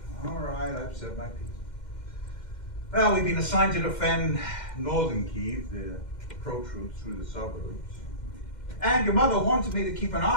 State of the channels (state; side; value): late; right; 2.1 ms